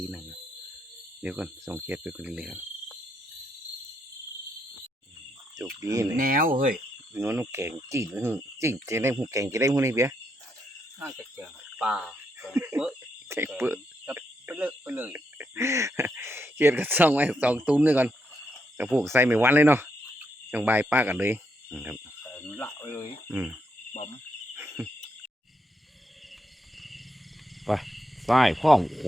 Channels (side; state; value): both; normal; correlation 0.79